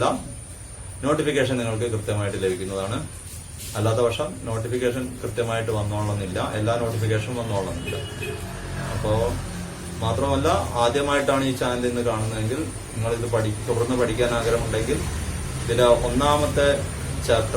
നോട്ടിഫിക്കേഷൻ നിങ്ങൾക്ക് കൃത്യമായിട്ട് ലഭിക്കുന്നതാണ്. അല്ലാത്ത പക്ഷം നോട്ടിഫിക്കേഷൻ കൃത്യമായിട്ട് വന്നോളന്നില്ല, എല്ലാ നോട്ടിഫിക്കേഷനും വന്നോളന്നില്ല. അപ്പോൾ മാത്രമല്ല, ആദ്യമായിട്ടാണ് ഈ ചാനൽ ഇന്ന് കാണുന്നതെങ്കിൽ നിങ്ങളിത് തുടർന്ന് പഠിക്കാൻ ആഗ്രഹമുണ്ടെങ്കിൽ ഇതിലെ 1ാമത്തെ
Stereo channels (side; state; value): both; identical; correlation 1.00